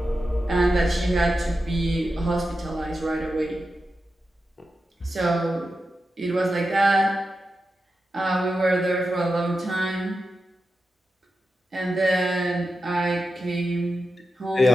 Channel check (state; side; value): normal; both; correlation 0.90